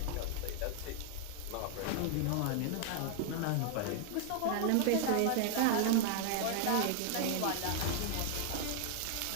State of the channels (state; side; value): different; both; correlation 0.00